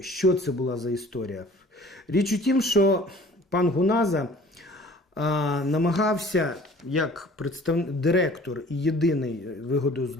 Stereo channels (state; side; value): normal; both; correlation 0.49